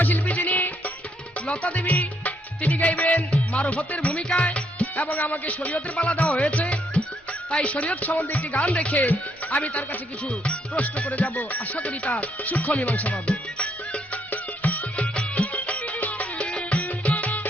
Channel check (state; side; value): normal; both; correlation 0.73